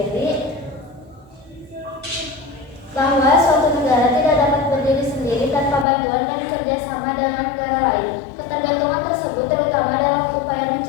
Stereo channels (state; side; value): drops out; right; at 5.9 s